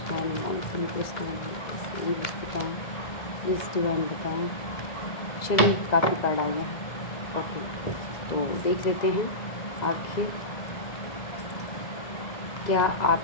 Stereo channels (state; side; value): late; right; 2.0 ms